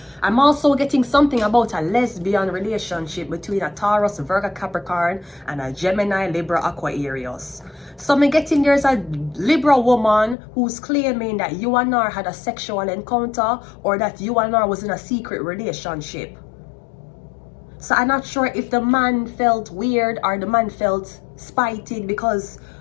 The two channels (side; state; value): right; drops out; at 10.4 s